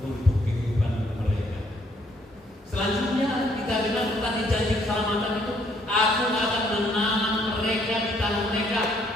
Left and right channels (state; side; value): normal; both; correlation 0.67